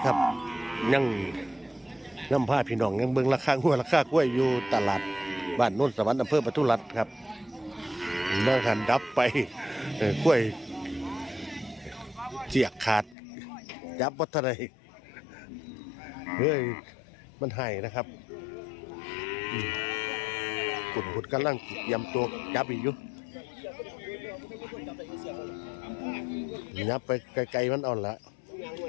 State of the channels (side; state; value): right; drops out; at 13.2 s